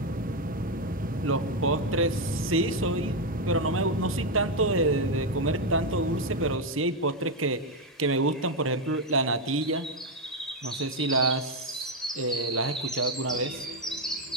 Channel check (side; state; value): both; normal; correlation 0.05